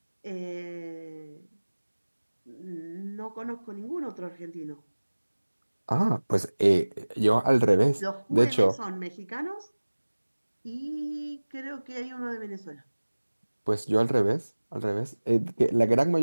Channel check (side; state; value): both; inverted; correlation -1.00